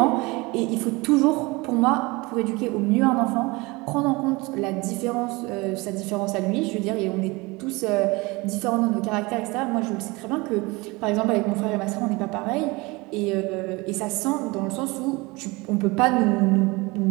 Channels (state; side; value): quieter; left; 24.2 dB